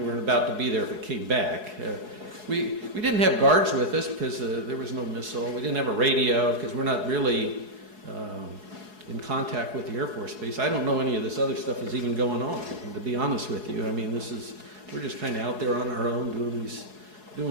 about to be there if it came back. We didn't have guards with us because there was no missile. We didn't have a radio because we're not really in contact with the Air Force Base. I don't know any of this other stuff is even going on, to be honest with you. I mean, we're just kind of out there on our own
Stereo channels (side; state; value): left; late; 4.7 ms